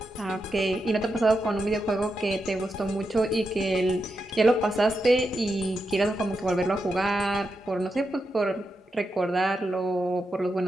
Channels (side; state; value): both; normal; correlation 0.86